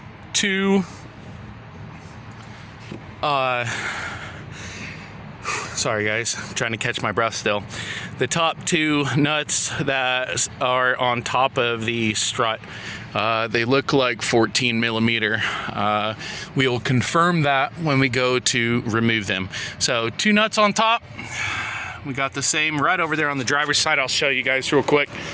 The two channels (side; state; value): both; identical; correlation 1.00